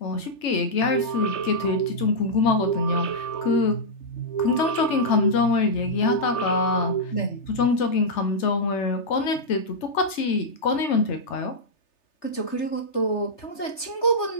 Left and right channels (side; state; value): right; late; 3.3 ms